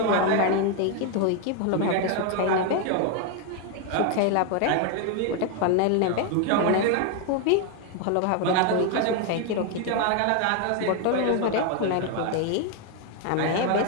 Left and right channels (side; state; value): both; different; correlation 0.01